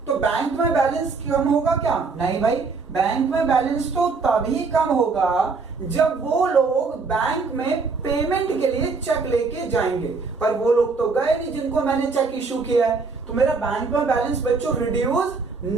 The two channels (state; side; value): quieter; left; 4.4 dB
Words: तो बैंक में बैलेंस कम होगा क्या? नहीं भाई, बैंक में बैलेंस तो तभी कम होगा जब वो लोग बैंक में पेमेंट के लिए चेक लेके जाएंगे। पर वो लोग तो गए नहीं जिनको मैंने चेक इशू किया है, तो मेरा बैंक में बैलेंस बच्चों रिड्यूस